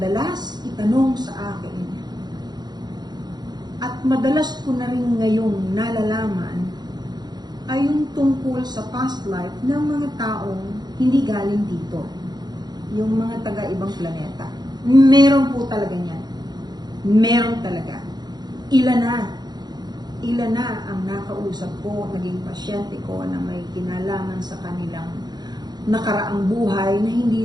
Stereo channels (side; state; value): left; late; 0.20 ms